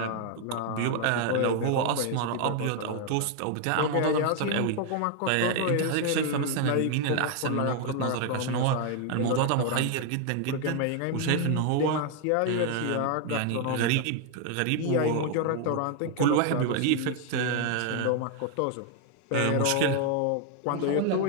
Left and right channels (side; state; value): both; different; correlation 0.01